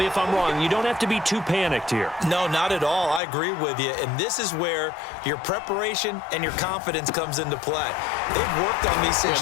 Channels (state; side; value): drops out; right; at 3.2 s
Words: if I'm wrong. You don't have to be too panicked here. No, not at all. I agree with you. And this is where your preparation and your confidence comes into play. They've worked on these